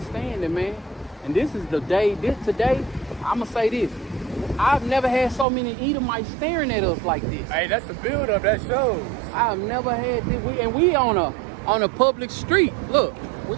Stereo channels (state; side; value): drops out; left; at 5.5 s